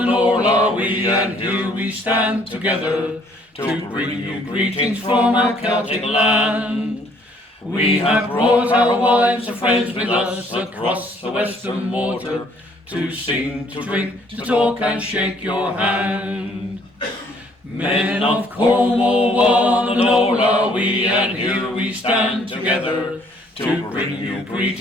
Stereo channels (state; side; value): normal; both; correlation 0.63